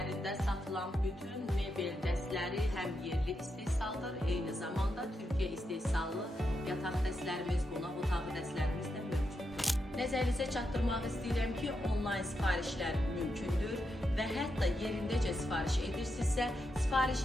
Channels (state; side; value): normal; both; correlation 0.84